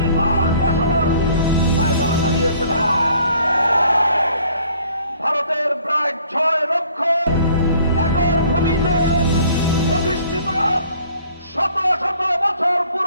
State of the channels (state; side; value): inverted; both; correlation -0.57